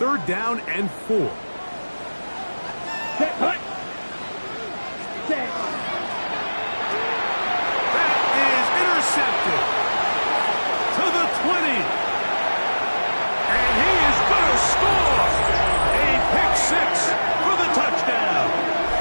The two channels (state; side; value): inverted; both; correlation -1.00